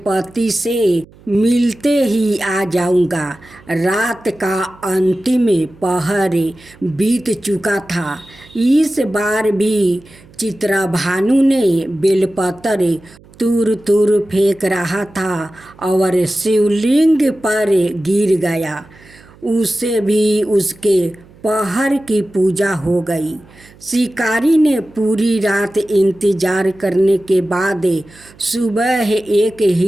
से मिलते ही आ जाऊंगा। रात का अंतिम पहर बीत चुका था। इस बार भी चित्रा भानु ने बेलपत्र दूर दूर फेंक रहा था और शिवलिंग पर गिर गया। उसे भी उसके पहर की पूजा हो गई। शिकारी ने पूरी रात इंतजार करने के बाद सुबह एक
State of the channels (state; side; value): noise; right; hum, 25 dB below the sound